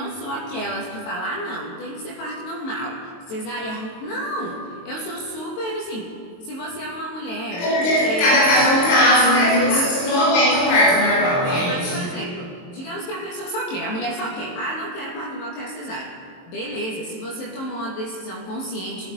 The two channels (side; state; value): right; late; 23 ms